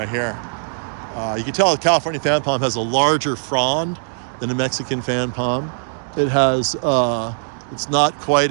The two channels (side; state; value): left; silent; digital silence